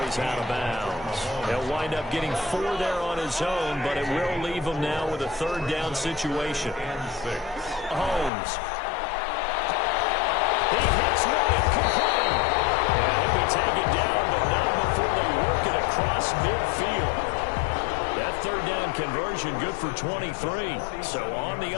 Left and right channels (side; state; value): right; drops out; at 8.3 s